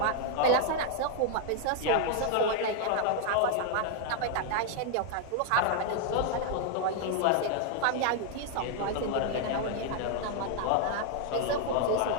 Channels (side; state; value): both; different; correlation 0.00